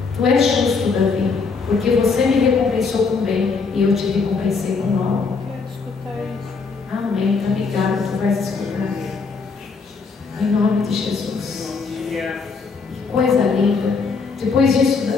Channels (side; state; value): right; quieter; 4.8 dB